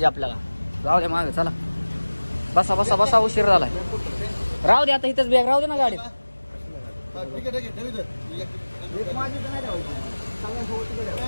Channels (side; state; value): both; inverted; correlation -1.00